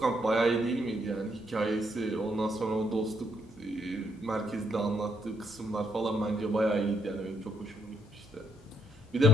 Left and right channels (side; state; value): both; normal; correlation 0.74